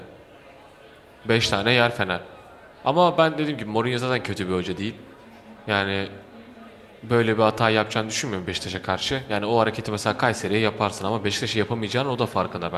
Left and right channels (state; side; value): identical; both; correlation 1.00